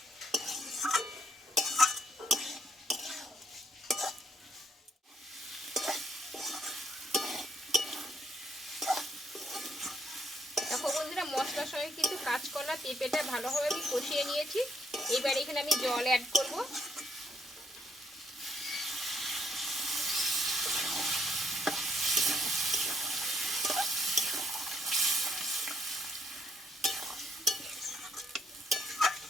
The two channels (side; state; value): both; normal; correlation 0.72